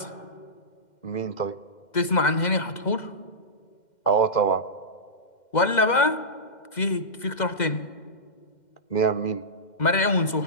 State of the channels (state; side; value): late; right; 2.1 ms